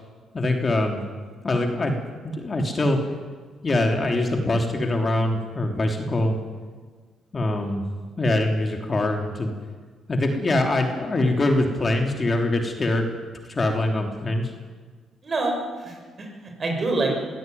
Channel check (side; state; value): both; normal; correlation 0.86